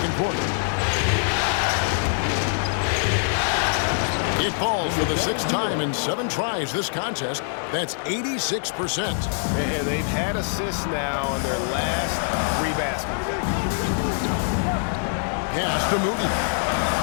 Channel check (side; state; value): right; silent; digital silence